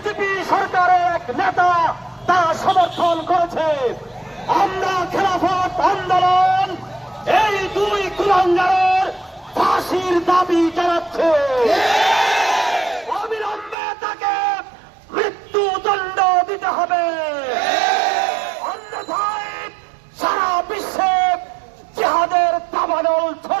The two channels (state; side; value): drops out; left; at 13.8 s